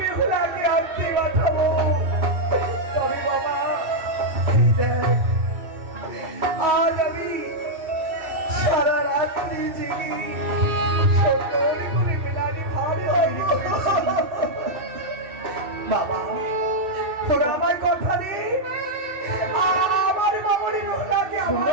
বেহুলাকে আনতে পাঠাবো। তবে বাবা, এই দেখ, আজ আমি সারা রাত্রি জেগে সুন্দর করে মেলানির হাড়ি তৈরি করেছি। বাবা, তোরা আমার কথা দে, আমার মামুনি বেহুলাকে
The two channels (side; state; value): left; late; 2.7 ms